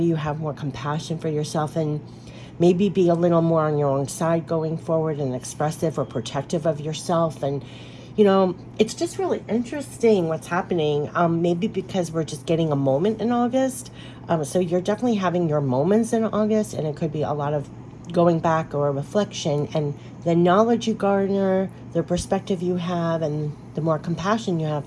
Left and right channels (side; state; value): both; identical; correlation 1.00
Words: you have more compassion for yourself? And maybe be a little more on your own side going forward and expressive or protective of yourself. And, you know, it's just really interesting what's happening. Maybe because we're just getting a moment in August. So you're definitely having your moments in August, and it could be a lot of going back or reflection, and the knowledge you garner, the perspective you have, and the more compassion you have